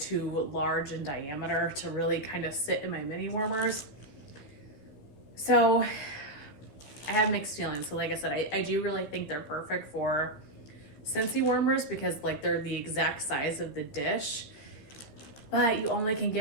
large in diameter to really kind of sit in my mini warmers. So I have mixed feelings. So like I said, I do really think they're perfect for Scentsy warmers because like they're the exact size of the dish, but you only can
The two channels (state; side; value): late; right; 14 ms